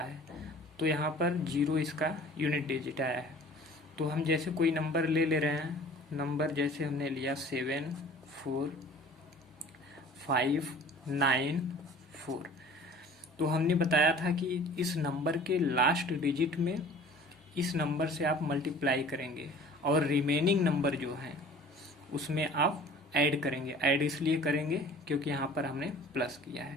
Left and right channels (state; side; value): normal; both; correlation 0.46